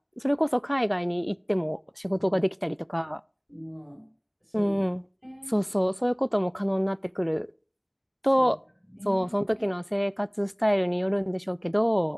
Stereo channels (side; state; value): both; identical; correlation 1.00